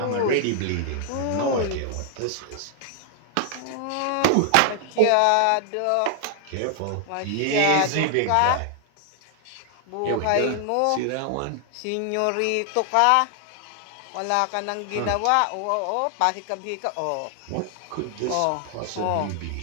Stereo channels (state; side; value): different; both; correlation 0.00